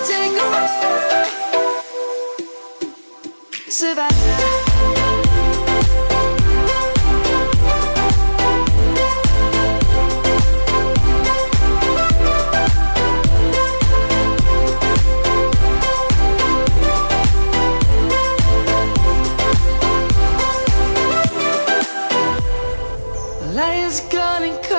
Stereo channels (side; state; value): both; inverted; correlation -1.00